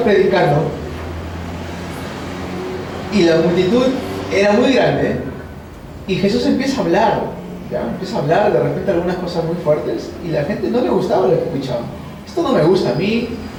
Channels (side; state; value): both; identical; correlation 1.00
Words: predicando y la multitud era muy grande Y Jesús empieza a hablar, ¿ya? Empieza a hablar de repente algunas cosas muy fuertes y la gente no le gustaba lo que escuchaba. Esto no me gusta, a mí